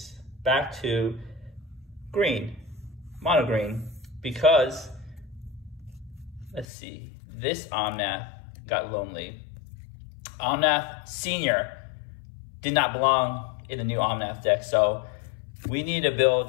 back to green, mono green, because, let's see, this Omnath got lonely. Omnath Senior did not belong in the new Omnath deck, so we need to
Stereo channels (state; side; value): drops out; right; at 6.7 s